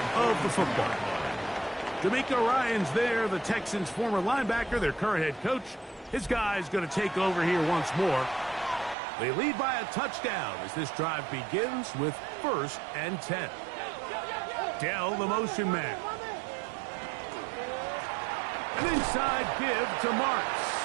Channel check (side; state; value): left; drops out; at 9.0 s